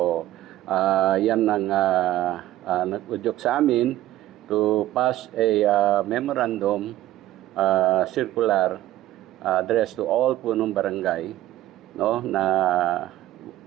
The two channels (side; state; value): left; quieter; 14.6 dB